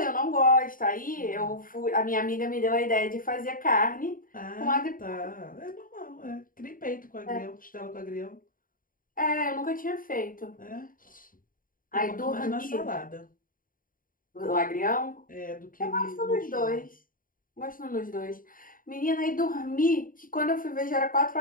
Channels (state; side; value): late; right; 0.40 ms